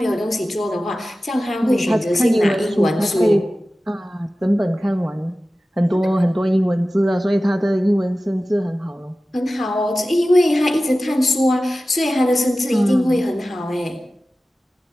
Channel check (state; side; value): normal; both; correlation 0.96